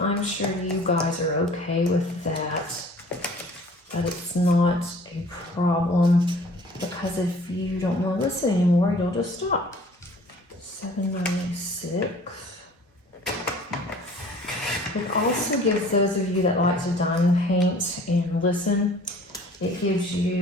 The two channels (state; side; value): normal; both; correlation 0.50